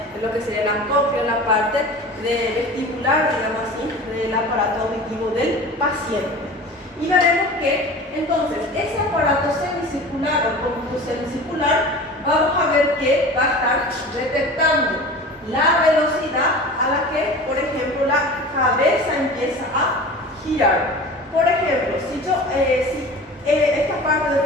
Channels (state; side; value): normal; both; correlation 0.37